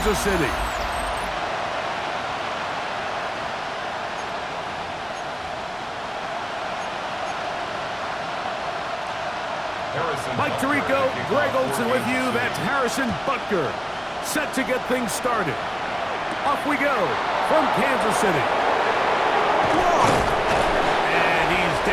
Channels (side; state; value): both; identical; correlation 1.00